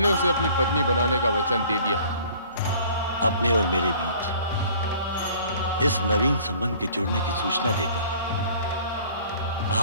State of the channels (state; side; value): inverted; both; correlation -0.51